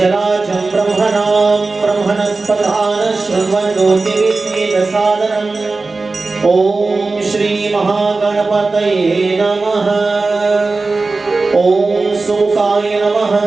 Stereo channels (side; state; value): left; quieter; 3.7 dB